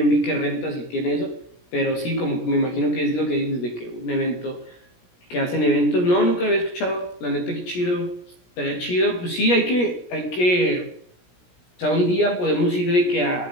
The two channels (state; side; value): late; right; 17 ms